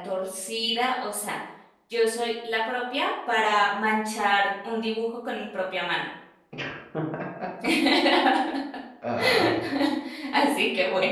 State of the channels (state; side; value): identical; both; correlation 1.00